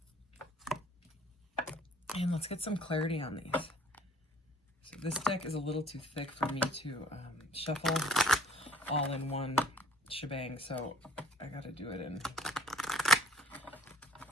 And let's get some clarity on these. So this deck is a little too thick for me to shuffle all in one shebang, so I I got to do it in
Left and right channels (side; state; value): both; normal; correlation 0.53